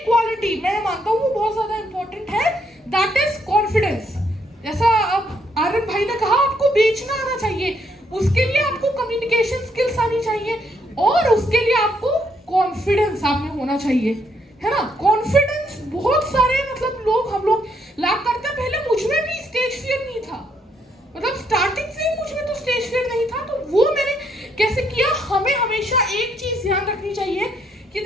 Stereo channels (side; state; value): both; normal; correlation 0.73